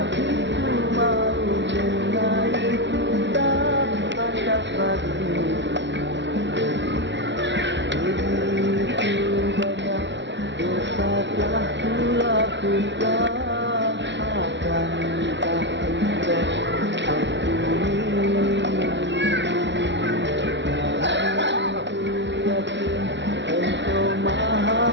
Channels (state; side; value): late; left; 0.52 ms